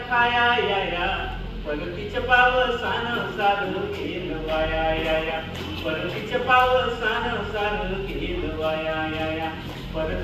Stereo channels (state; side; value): identical; both; correlation 1.00